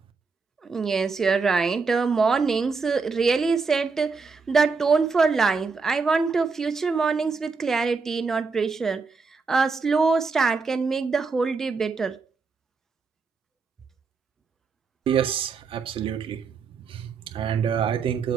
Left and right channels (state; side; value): quieter; left; 4.7 dB